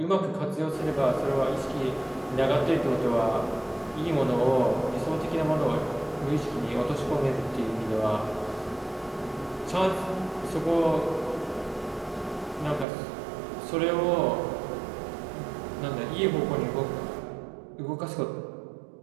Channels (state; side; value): drops out; left; at 12.9 s